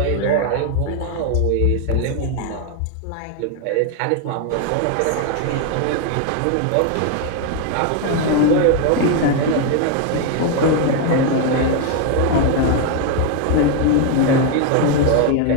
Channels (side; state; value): both; different; correlation 0.01